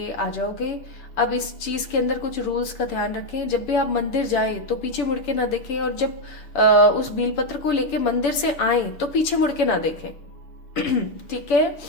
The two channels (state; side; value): late; right; 7.1 ms